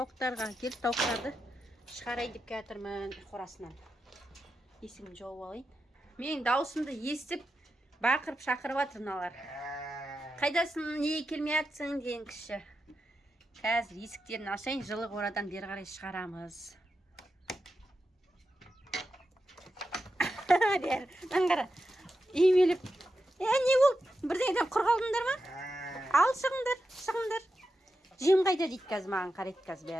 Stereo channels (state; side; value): normal; both; correlation 0.89